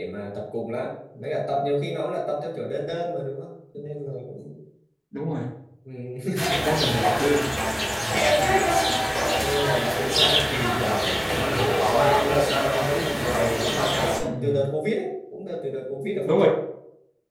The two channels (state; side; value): identical; both; correlation 1.00